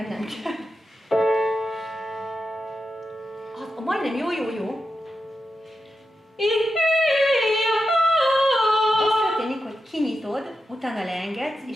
nem kell. Majdnem jó. Az történik, hogy kinyitod, utána leengedsz,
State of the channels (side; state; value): both; normal; correlation 0.89